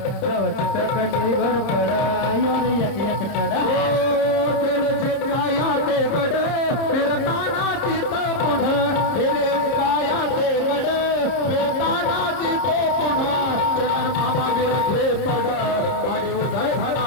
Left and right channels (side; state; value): right; late; 30 ms